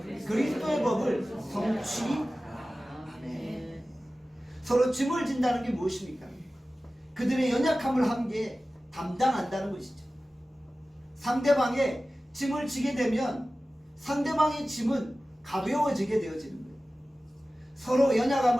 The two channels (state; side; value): normal; both; correlation 0.96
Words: 그리스도의 법을 성취하네. 서로 짐을 진다는 게 무엇입니까? 그들의 연약함을 함께 담당한다는 것이죠. 상대방의 짐을 지게 되면 상대방의 짐은 가벼워지게 되어지는 거예요. 서로